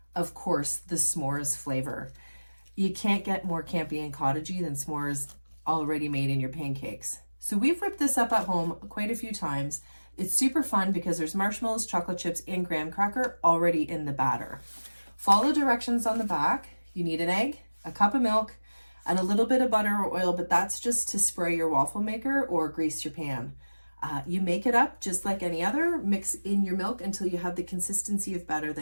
of course, the s'mores flavor. You can't get more campy and cottagey than s'mores already made in your pancakes. So we've whipped this up at home quite a few times. It's super fun because there's marshmallows, chocolate chips, and graham cracker already in the batter. Follow directions on the back. You need an egg, a cup of milk, and a little bit of butter or oil, but that's just to spray your waffle maker or grease your pan. You make it up just like any other. Mix in your milk until you have the consistency of batter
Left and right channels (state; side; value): inverted; both; correlation -1.00